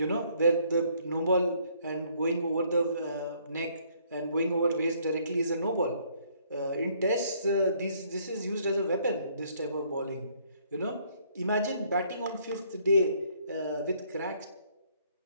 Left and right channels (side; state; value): both; inverted; correlation -0.65